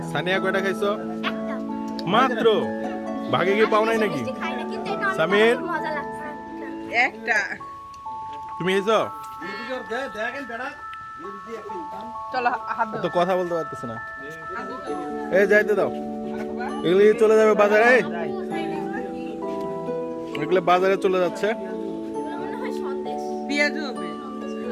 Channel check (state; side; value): identical; both; correlation 1.00